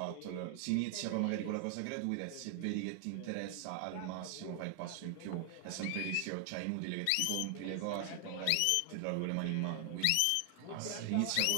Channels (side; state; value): both; different; correlation 0.00